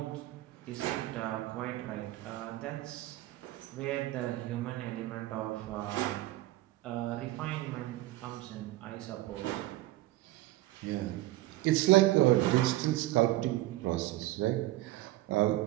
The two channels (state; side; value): quieter; left; 17.0 dB